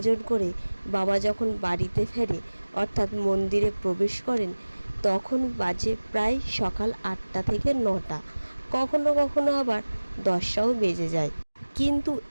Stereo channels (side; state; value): both; inverted; correlation -1.00